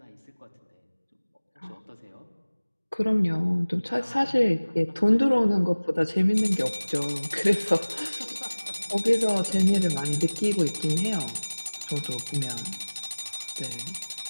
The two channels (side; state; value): both; inverted; correlation -1.00